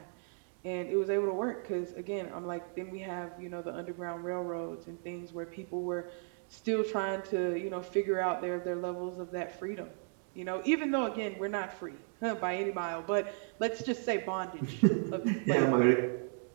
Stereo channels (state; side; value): silent; left; 55 dB below the other